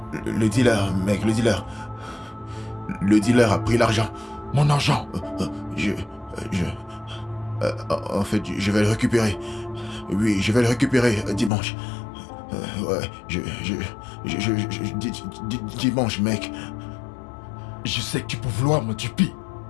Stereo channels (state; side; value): drops out; right; at 11.5 s